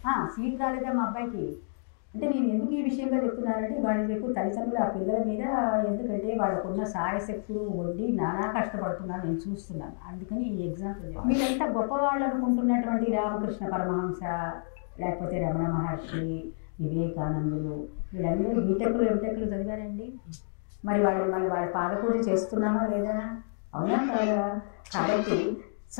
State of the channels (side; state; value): right; silent; digital silence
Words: సీట్ రాలేదా మా అబ్బాయికి అంటే నేను ఎందుకు ఈ విషయంగా చెప్తున్నానంటే వాడి రేపు తల్లిదండ్రులు ఆ పిల్లల మీద, ఎందుకంటే వాళ్ళకున్న సాయశక్తులు వడ్డీ నానా కష్టపడుతున్నాను నేను చూస్తున్నాను. అందుకని ఈ ఎగ్జాంపుల్. మీరంతా గొప్పవాళ్ళు అనుకుంటున్నటువంటి రామకృష్ణ పరమహంస, లేకపోతే రమణ మహర్షి, వివేకానందులు, వీళ్ళందరూ బీటెక్లు ఎంటెక్లు చదివారండి. మరి వాళ్ళ పాదపూజ చేస్తున్నామా లేదా? అవునా కాదా? కాబట్టి